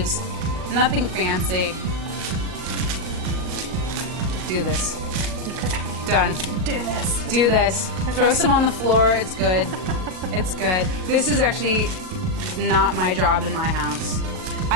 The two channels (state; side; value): late; left; 38 ms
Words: nothing fancy. Do this. Done. Do this. Do this. Okay. Throw some on the floor. It's good. It's good. This is actually not my job in my house. I